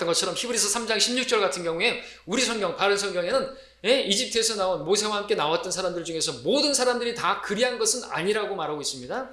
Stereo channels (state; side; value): identical; both; correlation 1.00